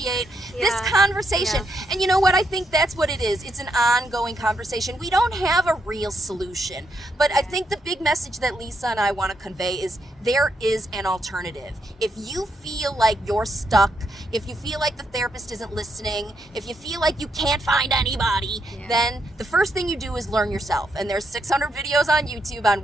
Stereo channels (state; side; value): normal; both; correlation 0.79